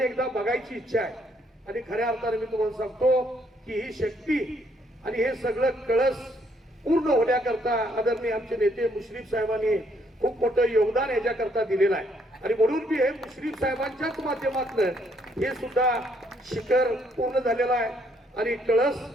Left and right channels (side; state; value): both; normal; correlation 0.70